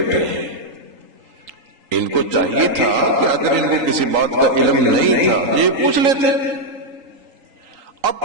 ہیں۔ ان کو چاہیے تھا کہ اگر ان کو کسی بات کا علم نہیں تھا یہ پوچھ لیتے،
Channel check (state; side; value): late; left; 3.8 ms